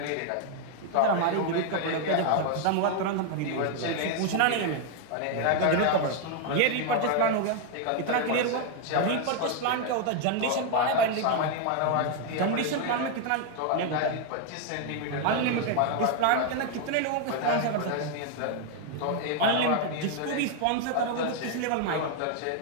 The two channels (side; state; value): both; different; correlation 0.01